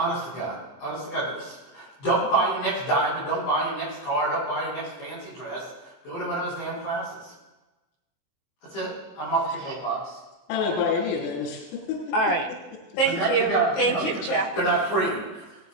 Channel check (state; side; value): late; right; 23 ms